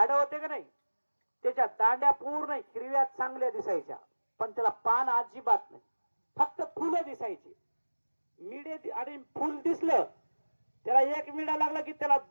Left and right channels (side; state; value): both; inverted; correlation -1.00